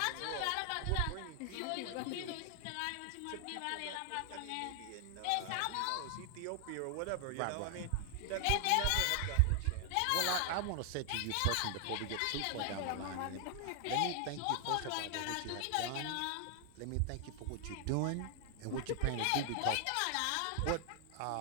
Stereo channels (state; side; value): different; both; correlation 0.00